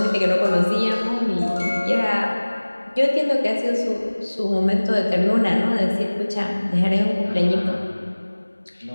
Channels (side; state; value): both; inverted; correlation -1.00